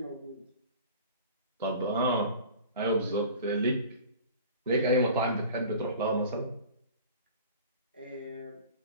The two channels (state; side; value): inverted; both; correlation -0.41